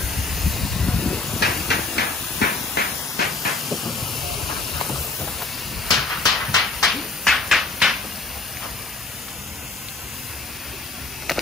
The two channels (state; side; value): quieter; right; 3.5 dB